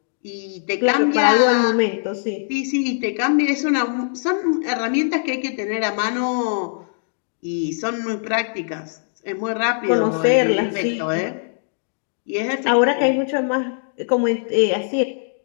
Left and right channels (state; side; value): silent; right; digital silence